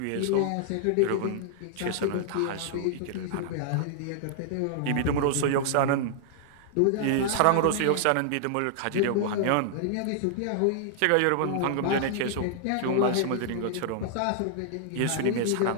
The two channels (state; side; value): different; both; correlation -0.01